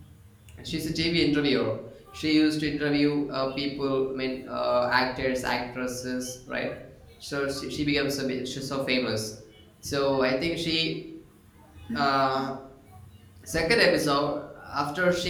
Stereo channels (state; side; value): identical; both; correlation 1.00